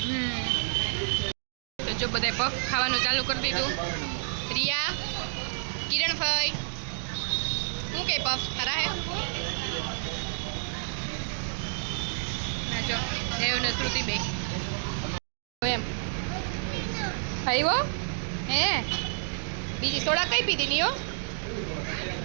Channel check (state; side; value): silent; left; digital silence